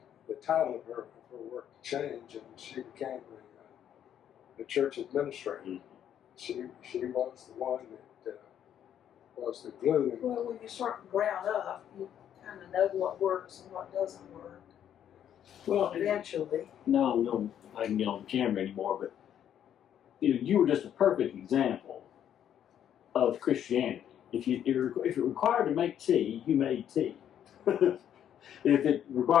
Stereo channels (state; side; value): quieter; right; 9.9 dB